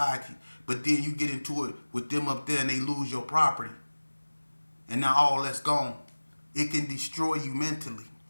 But then you get into it with them up there and they lose your property. And now all that's gone. It can destroy you mentally.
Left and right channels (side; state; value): both; inverted; correlation -1.00